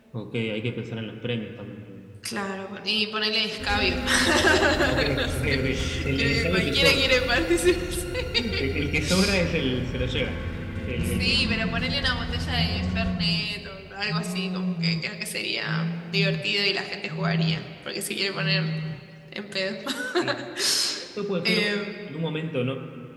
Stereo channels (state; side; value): identical; both; correlation 1.00